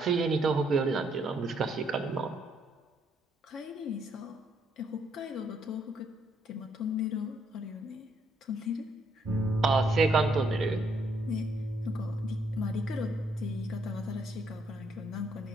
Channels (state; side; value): normal; both; correlation 0.72